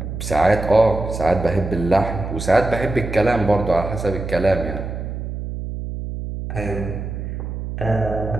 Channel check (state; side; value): noise; right; hum, 6 dB below the sound